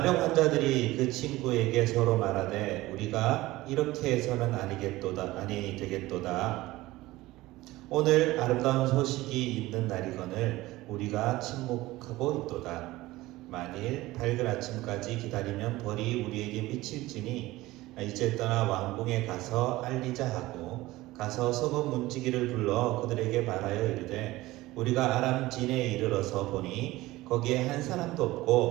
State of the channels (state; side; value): quieter; left; 18.3 dB